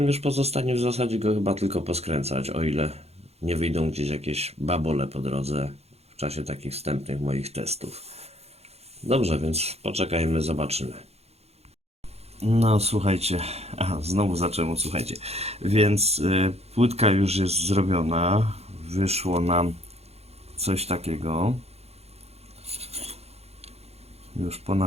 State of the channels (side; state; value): left; late; 0.30 ms